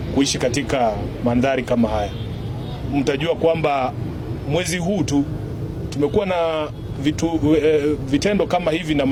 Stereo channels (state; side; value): identical; both; correlation 1.00